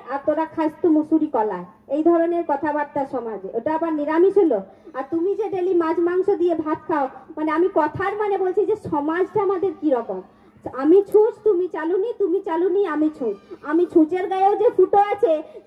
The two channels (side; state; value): both; identical; correlation 1.00